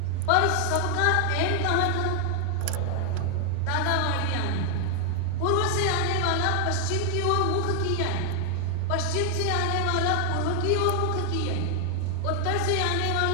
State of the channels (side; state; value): both; different; correlation 0.00